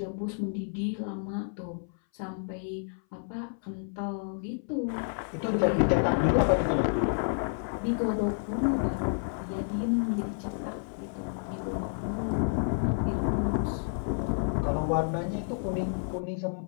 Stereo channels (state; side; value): silent; right; 58 dB below the other